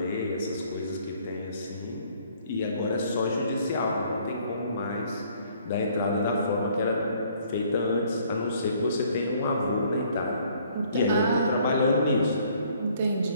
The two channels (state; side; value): inverted; both; correlation -0.61